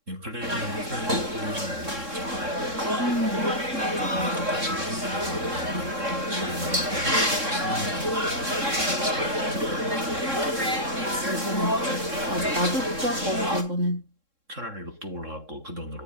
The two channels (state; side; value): late; left; 3.7 ms